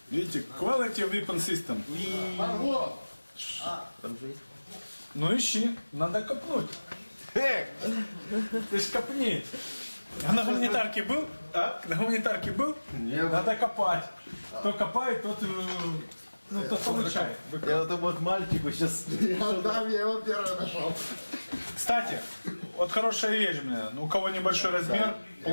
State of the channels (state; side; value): inverted; both; correlation -1.00